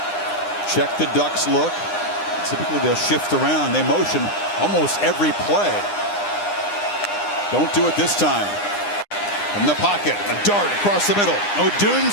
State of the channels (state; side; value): late; right; 9.8 ms